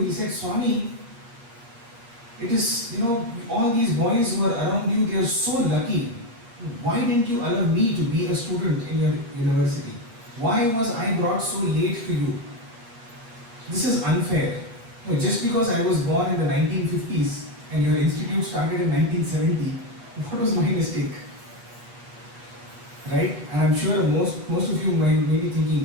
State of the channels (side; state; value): left; late; 8.4 ms